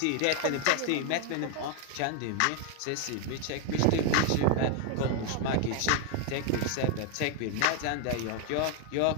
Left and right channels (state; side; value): different; both; correlation 0.01